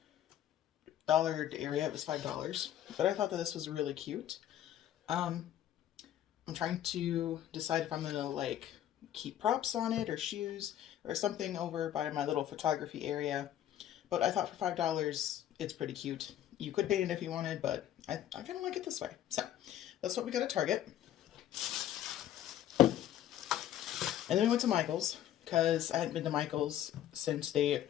dollar area, it was $5. But I thought that this was really cute. Um, I'm trying to decide if I'm gonna like keep props on it or shoes or something over by my little photography area. But I thought for $5 it's pretty cute. You could paint it if you wanted, but I kind of like it this way. So that's what we got at Target. And then we went to Michael's because I hadn't been to Michael's since they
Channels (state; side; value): quieter; right; 11.6 dB